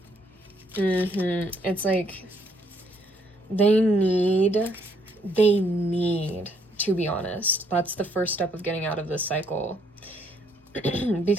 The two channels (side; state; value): both; normal; correlation 0.69